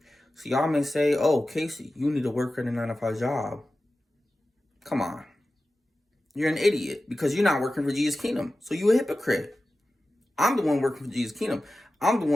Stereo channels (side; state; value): both; normal; correlation 0.94